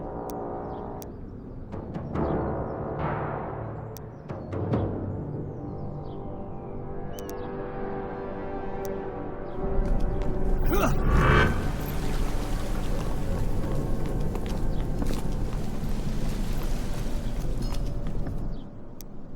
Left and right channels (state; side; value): identical; both; correlation 1.00